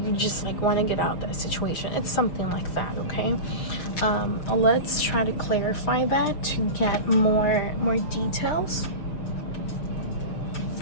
you just like want to get out of that situation. It's something like that. Okay, let's try to clarify that to get more details.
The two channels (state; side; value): late; right; 6.6 ms